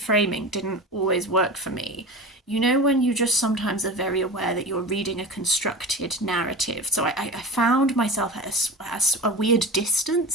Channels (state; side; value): normal; both; correlation 0.31